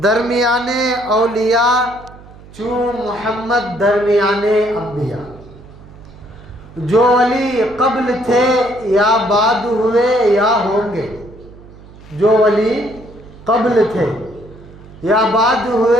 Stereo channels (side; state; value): right; noise; hum, 20 dB below the sound